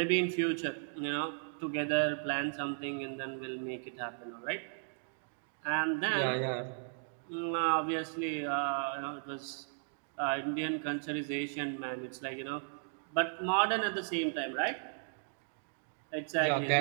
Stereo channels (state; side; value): silent; left; digital silence